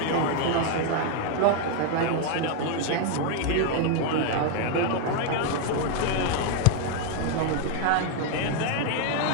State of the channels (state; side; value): different; both; correlation 0.01